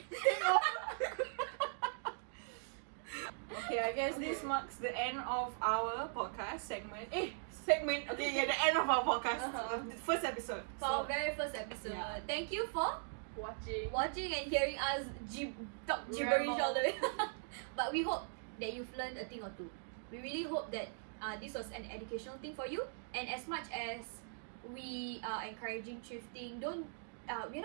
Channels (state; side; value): silent; left; digital silence